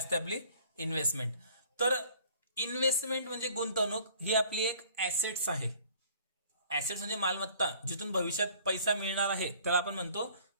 आपली? इन्व्हेस्टमेंट. तर इन्व्हेस्टमेंट म्हणजे गुंतवणूक, ही आपली एक ऍसेट्स आहे. ऍसेट्स म्हणजे मालमत्ता, जिथून भविष्यात पैसा मिळणार आहे त्याला आपण म्हणतो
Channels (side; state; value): both; inverted; correlation -0.54